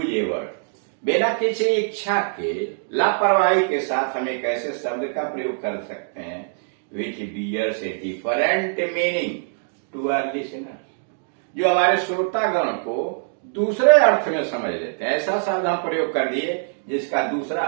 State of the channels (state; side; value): silent; left; digital silence